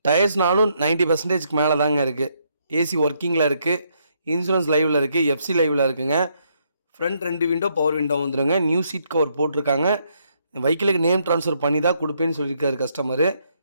டயர்ஸ்னாலும் 90% மேலே தாங்க இருக்குது. ஏசி ஒர்க்கிங்கில் இருக்குது. இன்சூரன்ஸ் லைவில் இருக்குது. எஃப்சி லைவில் இருக்குங்க. ஃப்ரண்ட் 2 விண்டோ பவர் விண்டோ வந்துடுங்க. நியூ சீட் கவர் போட்டிருக்காங்க. வெஹிக்கிளுக்கு நேம் ட்ரான்ஸ்ஃபர் பண்ணி தான் கொடுப்பேன்னு சொல்லியிருக்காரு கஸ்டமரு.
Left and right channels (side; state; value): both; inverted; correlation -0.74